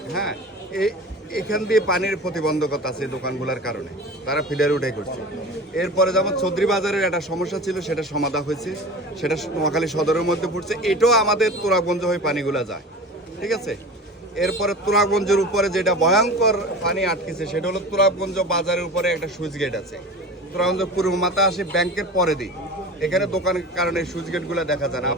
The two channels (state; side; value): normal; both; correlation 0.35